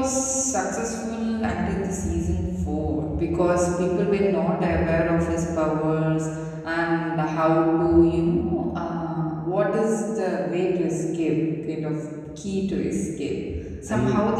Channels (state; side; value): identical; both; correlation 1.00